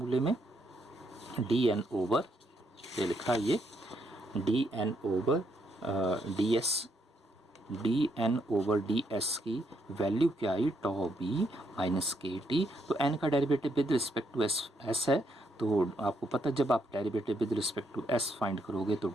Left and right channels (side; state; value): both; normal; correlation 0.76